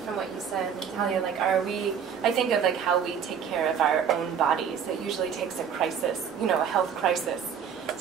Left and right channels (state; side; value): quieter; left; 7.6 dB